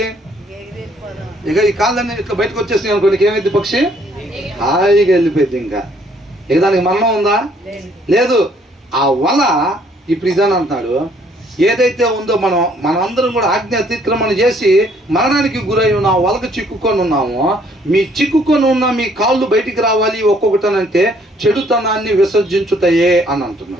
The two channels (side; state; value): both; normal; correlation 0.64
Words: ఇక ఈ కాళ్ళన్నీ ఇట్లా బయటకు వచ్చేసినాయి అనుకోండి, ఏమైంది, పక్షి హాయిగా వెళ్ళిపోయింది. ఇంకా ఇక దానికి మరణం ఉందా? లేదు. ఆ వల ఇప్పుడు ఇదని అంటున్నాడు, ఏదైతే ఉందో మనందరం కూడా ఆజ్ఞ అతిక్రమణ చేసి మరణానికి గురై ఉన్న వలకు చిక్కుకొని ఉన్నామో, మీ చిక్కుకొని ఉన్న మీ కాళ్ళు బయటికి రావాలి ఒక్కొక్కటనంటే చెడుతనాన్ని విసర్జించుతాయే అని